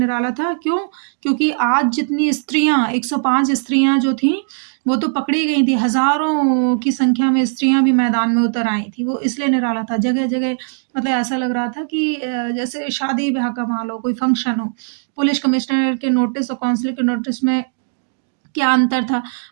था? क्यों? क्योंकि आज जितनी स्त्रियां 105 स्त्रियां जो थीं वो तो पकड़ी गई थी। हजारों की संख्या में स्त्रियां भी मैदान में उतर आई थी। वो इसलिए निराला था। जगह जगह मतलब ऐसा लग रहा था कि जैसे शादी ब्याह का माहौल हो, कोई फंक्शन हो। पुलिस कमिश्नर के नोटिस और काउंसिल के नोटिस में क्या अंतर था?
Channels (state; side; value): silent; left; digital silence